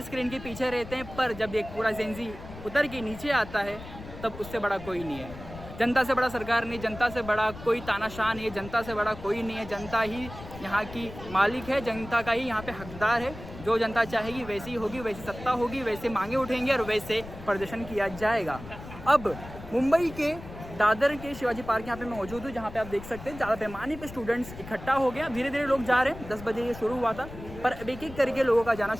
स्क्रीन के पीछे रहते हैं, पर जब एक पूरा जेन ज़ी उतर के नीचे आता है तब उससे बड़ा कोई नहीं है। जनता से बड़ा सरकार नहीं, जनता से बड़ा कोई तानाशाह नहीं है, जनता से बड़ा कोई नहीं है। जनता ही यहाँ की मालिक है, जनता का ही यहाँ पे हकदार है। जो जनता चाहेगी वैसी होगी, वैसी सत्ता होगी, वैसे मांगे उठेंगे और वैसे प्रदर्शन किया जाएगा। अब मुंबई के दादर के शिवाजी पार्क यहाँ पे मैं मौजूद हूँ, जहाँ पे आप देख सकते हैं ज़्यादा पैमाने पे स्टूडेंट्स इकट्ठा हो गया। धीरे धीरे लोग जा रहे हैं। 10 बजे ये शुरू हुआ था, पर अब एक एक करके लोगों का जाना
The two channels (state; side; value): noise; left; rumble, 14 dB below the sound